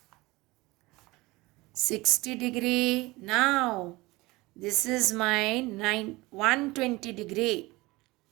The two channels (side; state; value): left; quieter; 21.6 dB